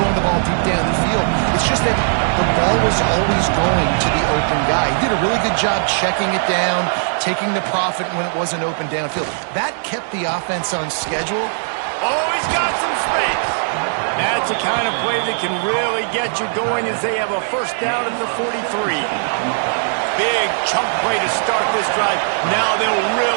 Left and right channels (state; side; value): silent; left; digital silence